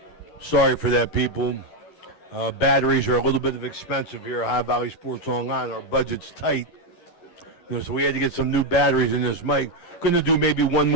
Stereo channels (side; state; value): right; late; 11 ms